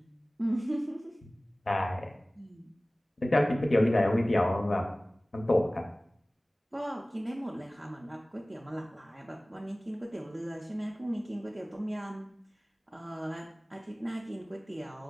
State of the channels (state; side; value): normal; both; correlation 0.98